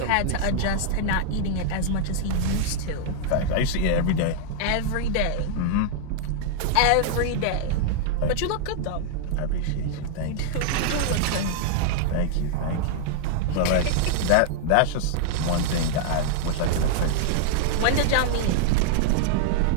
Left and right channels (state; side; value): different; both; correlation -0.01